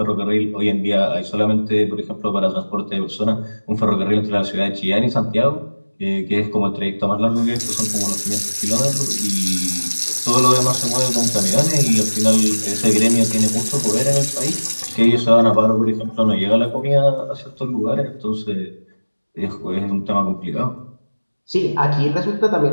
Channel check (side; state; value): both; inverted; correlation -1.00